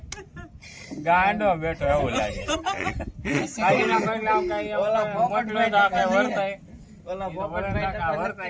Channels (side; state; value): both; identical; correlation 1.00